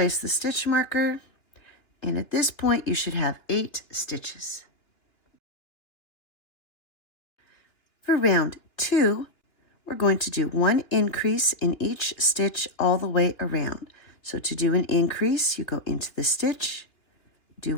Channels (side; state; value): right; late; 2.9 ms